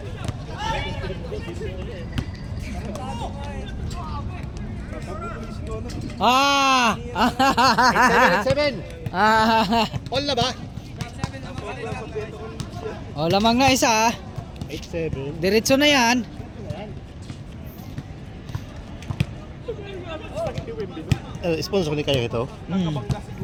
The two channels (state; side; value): identical; both; correlation 1.00